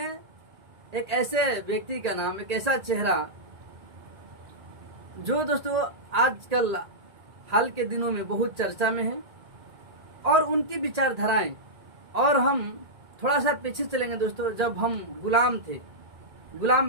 एक ऐसे व्यक्ति का नाम, एक ऐसा चेहरा जो दोस्तों आजकल हाल के दिनों में बहुत चर्चा में है और उनकी विचारधाराएं। और हम थोड़ा सा पीछे चलेंगे दोस्तों, जब हम गुलाम थे,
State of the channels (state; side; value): late; left; 1.8 ms